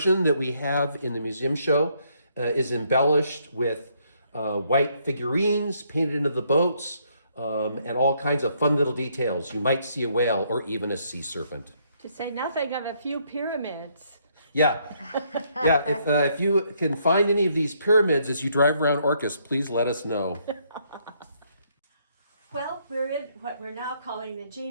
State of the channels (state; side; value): inverted; both; correlation -0.71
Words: that we have in the museum show is embellished with white figurines painted into the boats and all kinds of fun little details. You might see a whale or even a sea serpent. To say nothing of a few pyramids. Yeah. If you can find any of these pyramids as you drive around Orcas, please let us know. Well, we're in what we're now calling the